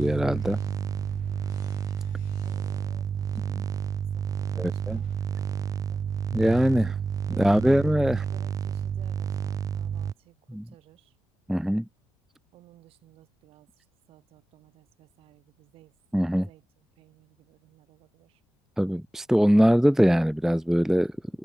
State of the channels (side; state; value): both; normal; correlation 0.94